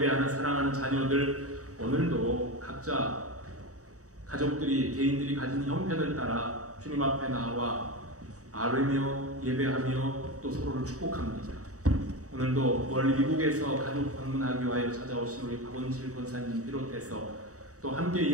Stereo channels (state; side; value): late; left; 0.66 ms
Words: 사랑하는 자녀들, 오늘도 각자 가족들이 개인들이 가진 형편을 따라 주님 앞에 나와 아뢰며 예배하며 또 서로를 축복합니다. 오늘도 멀리 미국에서 가족 방문하기 위하여 찾아오신 우리 박원실 권사님 비롯해서 또 함께